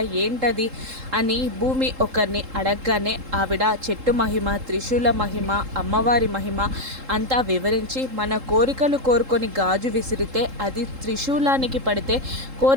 ఏంటది అని భూమి ఒకరిని అడగగానే ఆవిడ చెట్టు మహిమ, త్రిశూల మహిమ, అమ్మవారి మహిమ అంతా వివరించి మన కోరికలు కోరుకొని గాజు విసిరితే అది త్రిశూలానికి పడితే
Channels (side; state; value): left; late; 3.7 ms